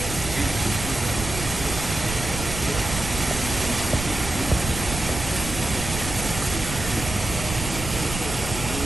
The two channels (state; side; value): noise; right; rumble, 7 dB below the sound